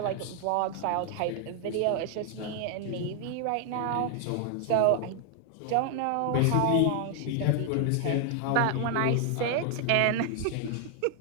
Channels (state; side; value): different; both; correlation 0.00